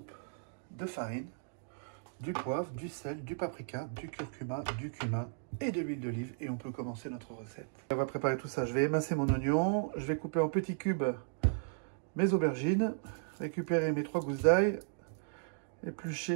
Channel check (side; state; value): left; silent; digital silence